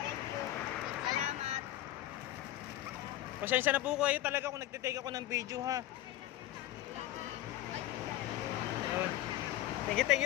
Thank you. Salamat. Pasensya na po kayo talaga kung nagte-take ako ng video ha. Ayun.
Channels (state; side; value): quieter; right; 14.5 dB